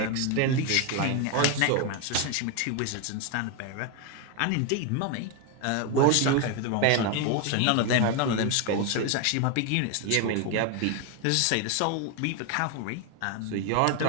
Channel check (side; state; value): both; different; correlation 0.01